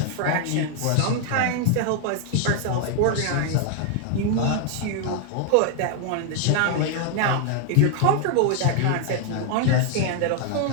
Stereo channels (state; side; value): different; both; correlation 0.00